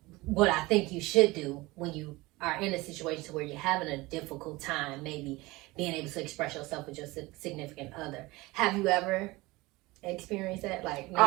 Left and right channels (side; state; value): left; quieter; 21.4 dB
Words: what I think you should do when you are in a situation where you're having a difficult time, maybe being able to express yourself with your significant other. Have you ever experienced that? Like